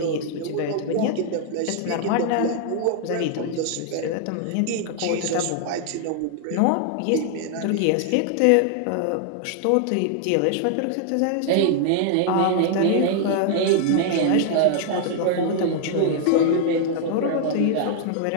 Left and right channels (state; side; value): different; both; correlation 0.00